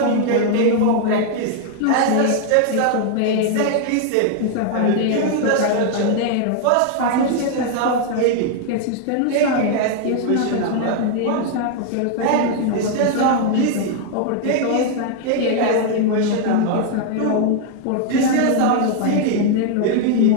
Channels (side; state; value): both; different; correlation 0.00